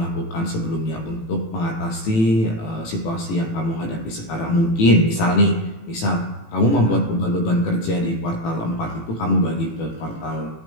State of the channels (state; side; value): late; right; 18 ms